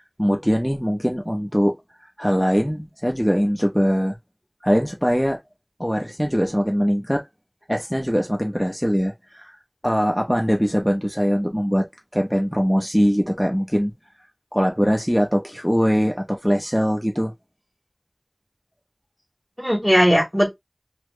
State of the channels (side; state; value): both; identical; correlation 1.00